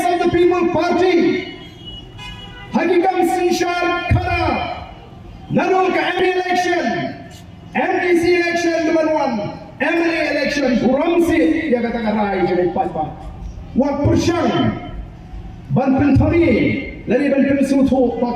of the people party. Hakikam sinsyar kara. Nalu ke MD election, MDC election number 1, MLA election kuramsi dia katakan rai jadi pat-pat. Wak persyang. Ban pentari, lari ban pensutu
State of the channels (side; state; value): both; identical; correlation 1.00